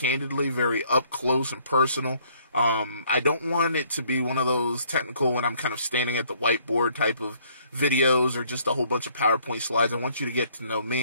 very up close and personal. I don't want it to be one of those technical when I'm kind of standing at the whiteboard type of videos or just a whole bunch of PowerPoint slides. I want you to get to know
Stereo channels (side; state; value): both; inverted; correlation -0.63